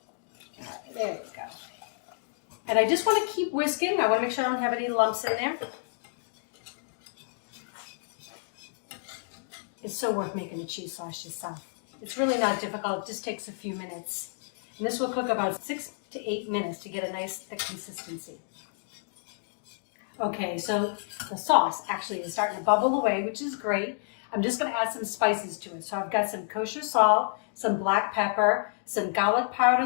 right, there we go. And I just want to keep whisking. I want to make sure I don't have any lumps in there. It's so worth making a cheese sauce yourself. It's really not difficult. It just takes a few minutes. And this will cook about 6 to 8 minutes to get a nice thick consistency. Okay, so the sauce actually is starting to bubble away, which is great. I'm just gonna add some spices to it. So I've got some kosher salt, some black pepper, some garlic powder,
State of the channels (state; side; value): silent; right; digital silence